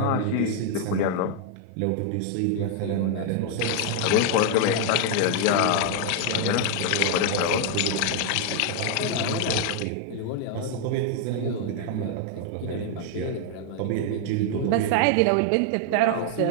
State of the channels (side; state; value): both; different; correlation 0.00